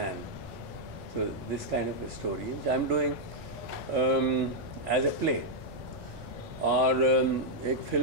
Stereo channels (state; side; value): normal; both; correlation -0.04